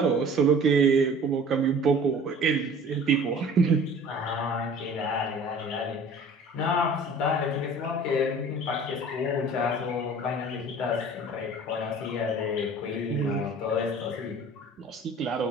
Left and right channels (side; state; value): both; normal; correlation 0.46